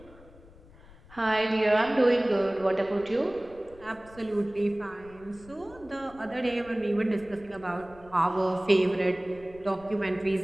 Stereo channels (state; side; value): noise; left; rumble, 23 dB below the sound